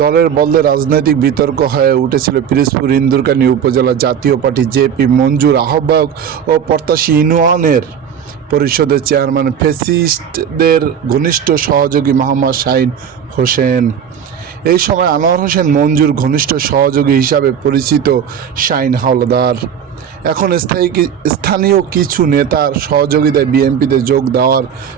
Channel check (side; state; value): left; quieter; 8.1 dB